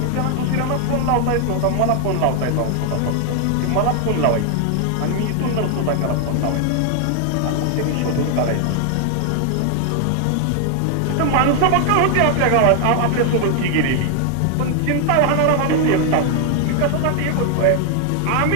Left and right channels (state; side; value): different; both; correlation 0.00